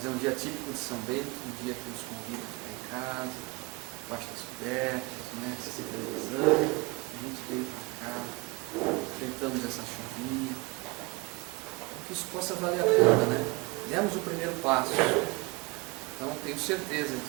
é um dia típico de São Bento, um dia que nos convida a ficar em casa, debaixo das cobertas, né? Se televisão, a gente veio para cá, enfrentamos essa chuvinha, que isso possa valer a pena, né? Demos o primeiro passo, então tenho certeza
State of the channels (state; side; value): quieter; left; 25.3 dB